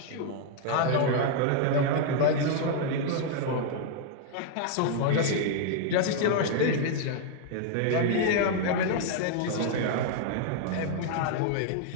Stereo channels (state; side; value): different; both; correlation 0.00